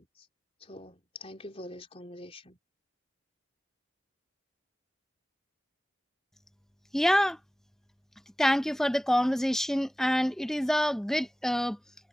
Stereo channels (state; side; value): normal; both; correlation 0.97